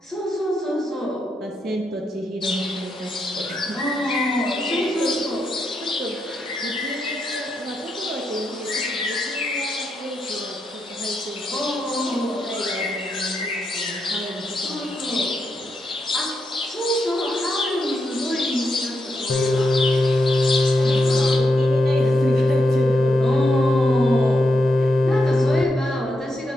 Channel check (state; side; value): normal; both; correlation 0.83